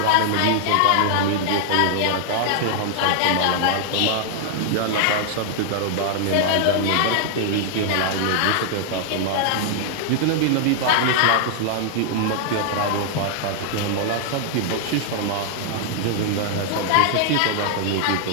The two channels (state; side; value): different; both; correlation 0.00